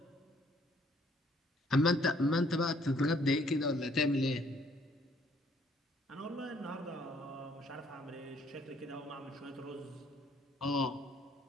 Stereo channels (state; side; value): normal; both; correlation 0.64